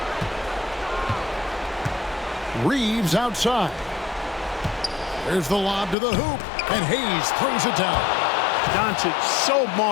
Reeves outside. There's the lob to the hoop, and Hayes throws it down. Doncic, so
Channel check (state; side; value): drops out; right; at 6.0 s